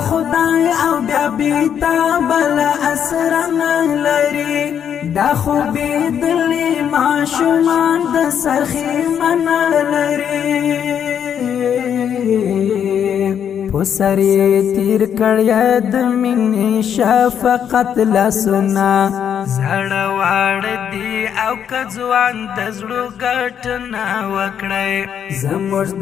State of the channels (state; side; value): quieter; right; 8.6 dB